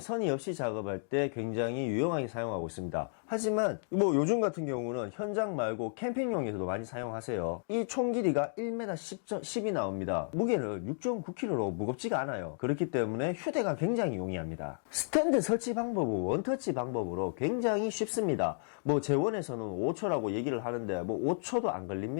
없이 작업할 때 굉장히 유용하게 사용하고 있습니다. 하지만 뭐 요즘 같은 경우는 현장 말고 캠핑용에서도 많이 사용하세요. 이 총 길이가 1m 10이 나옵니다. 무게는 6.9kg로 무겁지가 않아요. 그렇기 때문에 휴대가 굉장히 용이합니다. 스탠드 설치 방법은 원터치 방법으로 굉장히 쉽습니다. 뭐 재원에서는 5초라고 얘기를 하는데 뭐 5초도 안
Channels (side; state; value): right; silent; digital silence